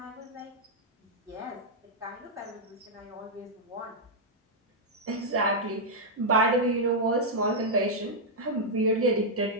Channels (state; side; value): normal; both; correlation -0.04